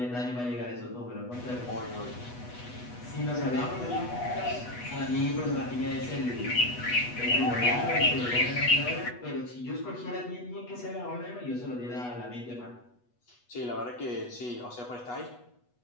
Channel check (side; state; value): right; late; 8.2 ms